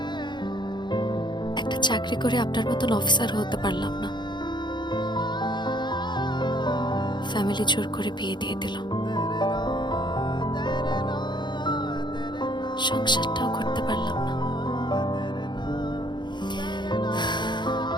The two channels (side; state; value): right; late; 0.22 ms